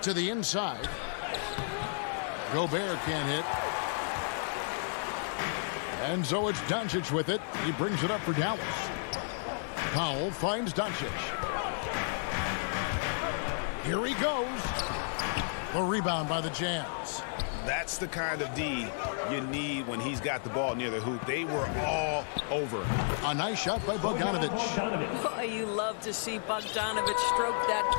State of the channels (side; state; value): right; silent; digital silence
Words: To the inside. Gobert can't hit. And so it's Doncic with it. He brings it up for Dallas. Powell finds Doncic. Here he goes. The rebound by the Jazz. That's the kind of D you need when he's got the ball near the hoop. They were all over. A nice shot by Bogdanovich. Boy, you love to see Bogdanovich stroke that